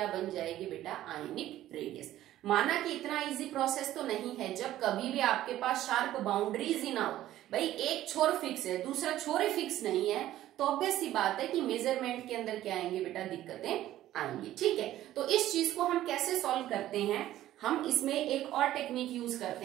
बन जाएगी बेटा, आयनिक रेडियस। माना कि इतना इजी प्रोसेस तो नहीं है, जब कभी भी आपके पास शार्प बाउंड्रीज ही ना हो, भाई एक छोर फिक्स है दूसरा छोर ही फिक्स नहीं है, तो ऑब्वियस सी बात है कि मेजरमेंट के अंदर क्या आएंगे बेटा, दिक्कतें आएंगी, ठीक है। तो इस चीज को हम कैसे सॉल्व करते हैं, हम इसमें एक और टेक्निक यूज करते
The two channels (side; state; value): left; quieter; 13.7 dB